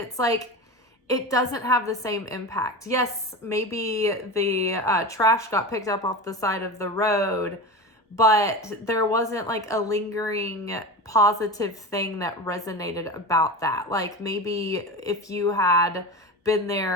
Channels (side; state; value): both; normal; correlation 0.27